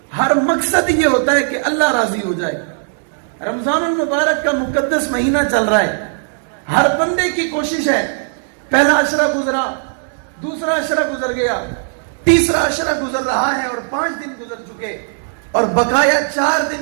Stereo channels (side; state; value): left; silent; digital silence